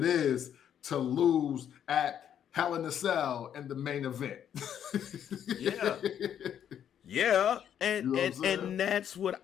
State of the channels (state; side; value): quieter; right; 9.4 dB